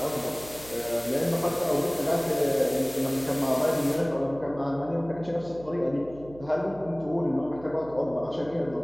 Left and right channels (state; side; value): noise; right; hum, 18 dB below the sound